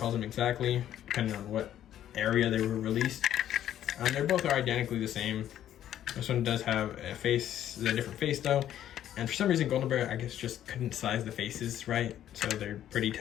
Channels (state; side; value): quieter; right; 11.4 dB